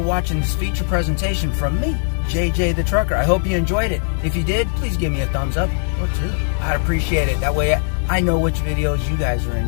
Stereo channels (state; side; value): silent; right; digital silence